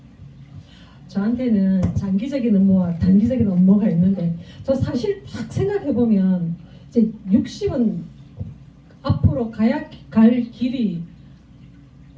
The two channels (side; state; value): both; identical; correlation 1.00